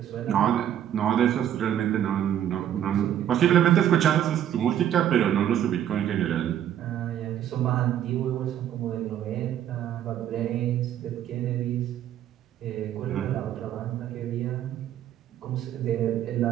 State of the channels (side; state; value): left; quieter; 10.7 dB